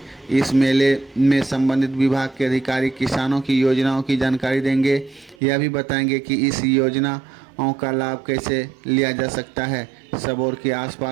इस मेले में संबंधित विभाग के अधिकारी किसानों की योजनाओं की जानकारी देंगे। यह भी बताएंगे कि इस योजनाओं का लाभ कैसे लिया जा सकता है। सबौर के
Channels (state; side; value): drops out; left; at 5.4 s